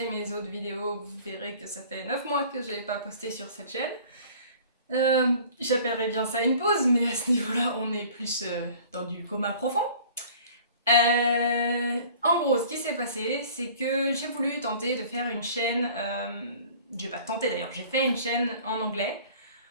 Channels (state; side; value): inverted; both; correlation -0.48